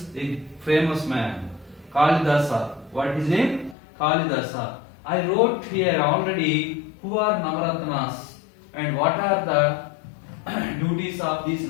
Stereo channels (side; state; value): right; drops out; at 3.8 s